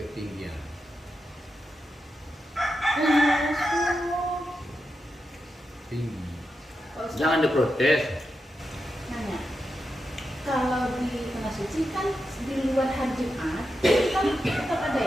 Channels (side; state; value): both; normal; correlation 0.88